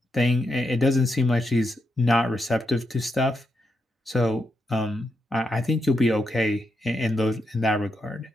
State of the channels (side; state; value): both; normal; correlation 0.83